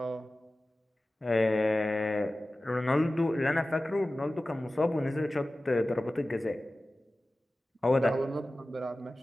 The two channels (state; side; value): normal; both; correlation 0.96